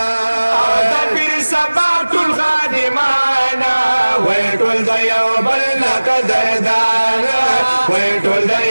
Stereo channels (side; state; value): both; inverted; correlation -1.00